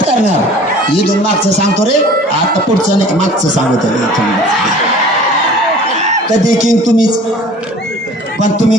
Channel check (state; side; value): normal; both; correlation 0.46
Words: करणार. इथून मागचं सांगतो रे, आता पुढचं नाही, मागचं सांगतो. कधी किंग तुम्हीच, पण